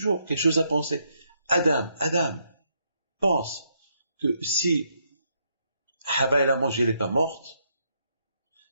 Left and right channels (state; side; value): inverted; both; correlation -0.76